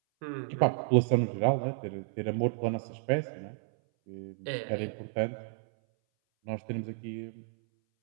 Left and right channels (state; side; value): silent; left; 57 dB below the other